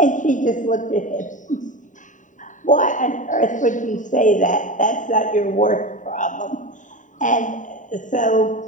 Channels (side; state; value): right; late; 0.37 ms